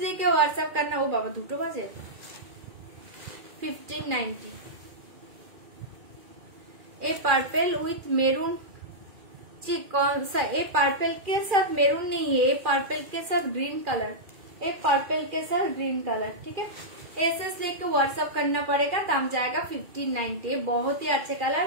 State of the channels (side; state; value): left; late; 2.4 ms